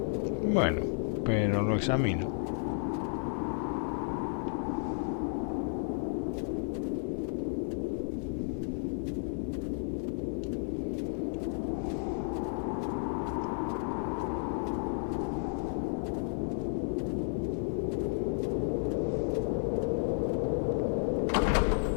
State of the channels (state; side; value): silent; right; 56 dB below the other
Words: Bueno, pero lo examino.